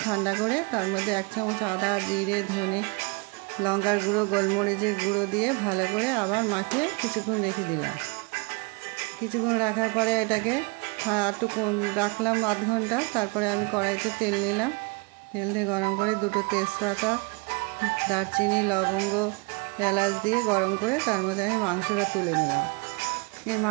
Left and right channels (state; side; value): quieter; left; 29.8 dB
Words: ঠান্ডা করে তার মধ্যে 1 চামচ আদা, জিরে, ধনে, লঙ্কার গুঁড়ো, গোলমরিচের গুঁড়ো দিয়ে ভালো করে আবার মাখিয়ে কিছুক্ষণ রেখে দিলাম। কিছুক্ষণ রাখার পরে এটাকে একটু রাখলাম আধ ঘন্টা। তারপরে আমি কড়াইতে তেল নিলাম, তেল দিয়ে গরম করে 2টো তেজপাতা, দারচিনি, লবঙ্গ, এলাচ দিয়ে গরম করে তার মধ্যে আমি মাংসটা তুলে নিলাম। এই